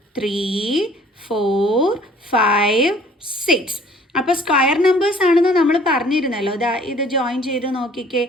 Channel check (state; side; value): normal; both; correlation 0.55